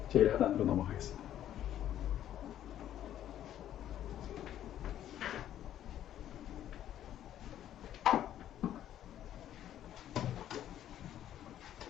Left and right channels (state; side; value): quieter; right; 11.4 dB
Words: 제일 하단으로 넘어가겠습니다.